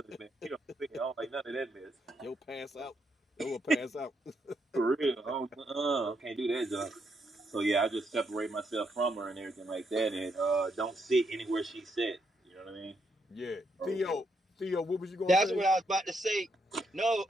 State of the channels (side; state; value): both; normal; correlation 0.77